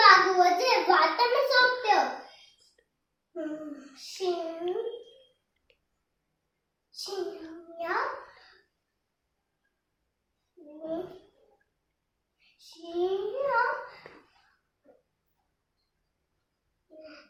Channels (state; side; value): identical; both; correlation 1.00